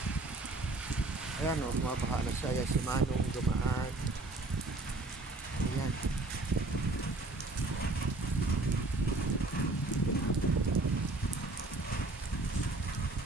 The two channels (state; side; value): quieter; left; 3.1 dB